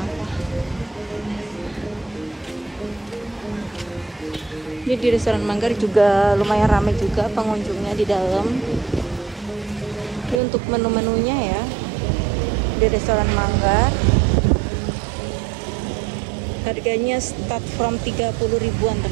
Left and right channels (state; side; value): drops out; left; at 10.4 s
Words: Ini di restoran Manggar juga lumayan ramai juga pengunjungnya di dalam. Ini untuk menu-menunya ya di restoran Manggar. Harganya start from 30 ribuan